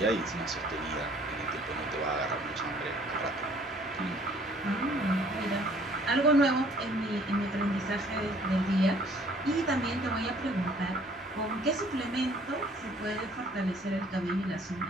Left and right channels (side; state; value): both; normal; correlation 0.58